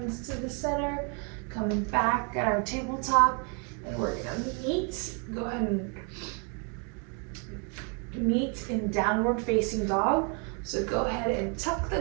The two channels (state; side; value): quieter; left; 36.9 dB